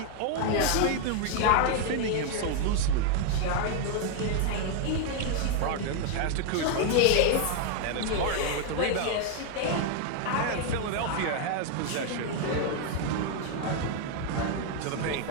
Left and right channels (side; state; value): both; different; correlation 0.00